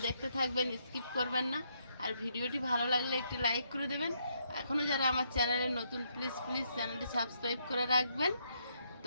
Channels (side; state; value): both; inverted; correlation -0.75